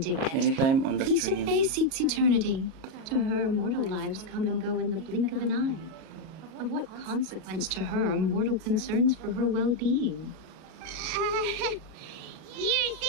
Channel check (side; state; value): left; late; 37 ms